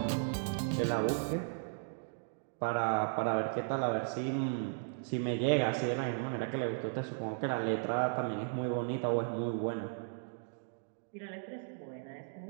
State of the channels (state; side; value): silent; left; digital silence